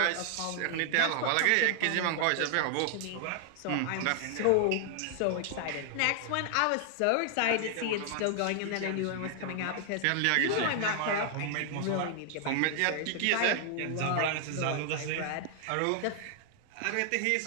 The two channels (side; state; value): both; different; correlation 0.00